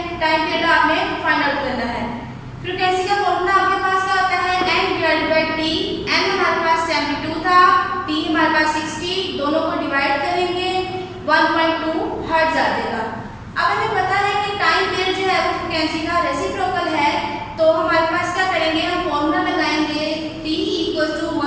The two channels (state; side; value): identical; both; correlation 1.00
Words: टाइम पीरियड आपने फाइंड आउट करना है। फ्रिक्वेंसी का फॉर्मूला आपके पास क्या होता है, N/T। N हमारे पास 72 था, T हमारे पास 60, दोनों को डिवाइड करेंगे 1.2 हर्ट्ज आ जाएगा। अब हमें पता है कि टाइम पीरियड जो है वो फ्रिक्वेंसी का रेसिप्रोकल है, तो हमारे पास क्या करेंगे, हम फॉर्मूला लगाएंगे T =